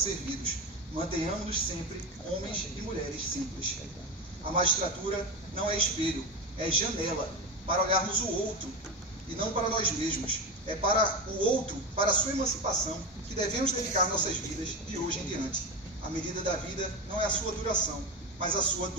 Mantenhamos-nos sempre homens e mulheres simples. A magistratura não é espelho, é janela para olharmos o outro e não para nós mesmos. É para o outro, para a sua emancipação, que devemos dedicar nossas vidas de hoje em diante. A medida da vida não é a sua duração, mas a sua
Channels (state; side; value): normal; both; correlation 0.19